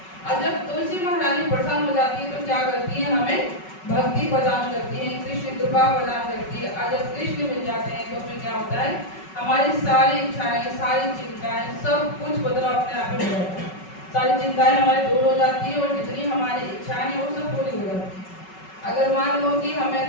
और जब तुलसी महारानी प्रसन्न हो जाती है तो क्या करती है, हमें भक्ति प्रदान करती है, कृष्ण कृपा प्रदान करती है। और जब कृष्ण मिल जाते हैं तो फिर क्या होता है, हमारी सारी इच्छाएं, सारी चिंताएं, सब कुछ बदलाव अपने आप में हो जाता है। सारी चिंताएं हमारी दूर हो जाती है और जितनी हमारी इच्छाएं हैं वो सब पूरी हो जाती है। अगर मान लो कि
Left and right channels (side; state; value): right; late; 5.3 ms